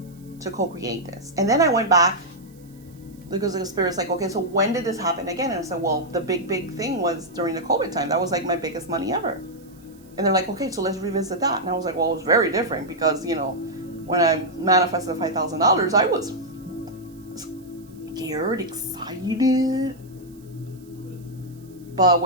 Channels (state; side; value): noise; right; hiss, 29 dB below the sound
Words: to co-create this. And then I went back because the Spirit's like, okay, so when did this happen again? And I said, well, the big thing was during the COVID time. That was like my biggest money ever. And they're like, okay, so let's revisit that. And I was like, well, it was very different because, when I manifested $5,000, I was scared, excited. But